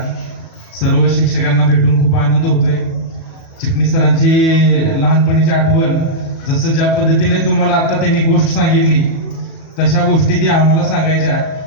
सर्व शिक्षकांना भेटून खूप आनंद होतोय. चिटणीस सरांची लहानपणीची आठवण, जसं ज्या पद्धतीने तुम्हाला आता त्यांनी गोष्ट सांगितली तशा गोष्टी ती आम्हाला सांगायच्या.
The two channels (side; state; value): right; late; 37 ms